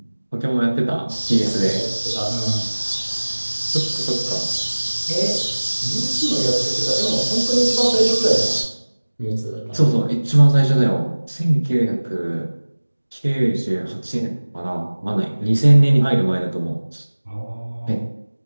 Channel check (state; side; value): inverted; both; correlation -1.00